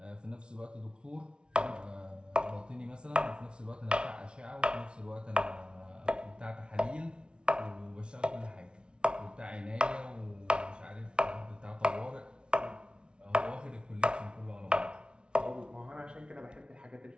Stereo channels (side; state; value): left; late; 0.056 ms